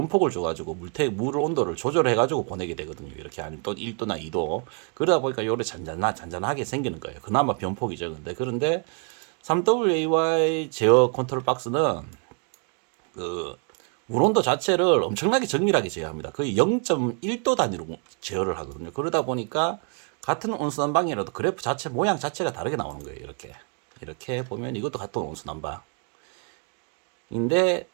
줘가지고 물 온도를 조절해가지고 보내게 되거든요. 이렇게 한 또 1도나 2도. 그러다 보니까 요래 잔잔하게 생기는 거예요. 그나마 변폭이 적은데. 그런데 3WAY 제어 컨트롤 박스는 그 물온도 자체를 엄청나게 정밀하게 제어합니다. 거의 0.1도 단위로 제어를 하거든요. 그러다 보니까 같은 온수난방이라도 그래프 자체 모양 자체가 다르게 나오는 거예요. 이렇게 보면 이것도 같은 온수난방. 인데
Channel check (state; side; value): quieter; left; 39.8 dB